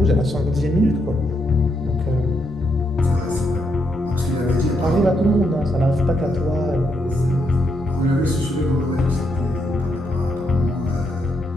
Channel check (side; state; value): both; normal; correlation 0.78